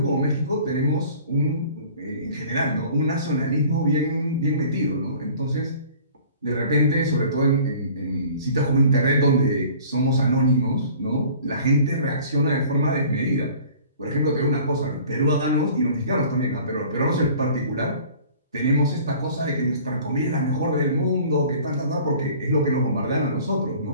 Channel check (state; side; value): inverted; both; correlation -0.48